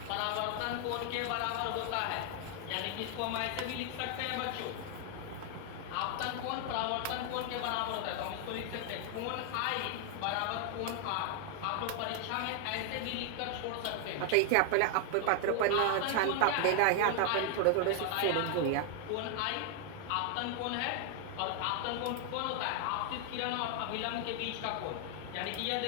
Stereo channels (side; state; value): both; different; correlation 0.00